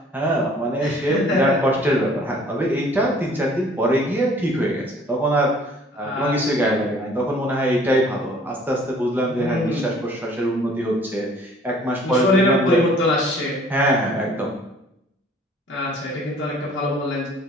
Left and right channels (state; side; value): normal; both; correlation 0.54